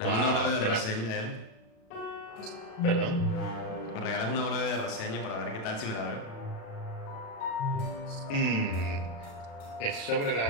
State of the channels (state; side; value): late; right; 36 ms